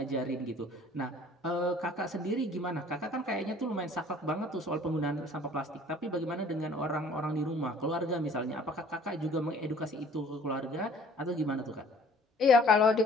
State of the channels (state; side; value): normal; both; correlation 0.53